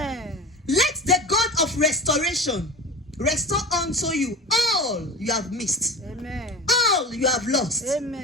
Let the God of restoration restore unto you all you have missed, Amen. all you have lost,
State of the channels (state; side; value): normal; both; correlation 0.31